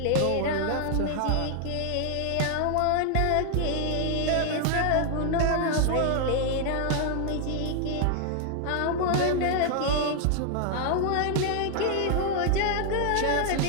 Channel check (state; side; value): different; both; correlation 0.00